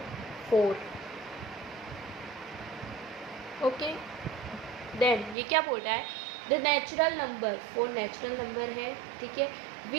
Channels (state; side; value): drops out; left; at 5.4 s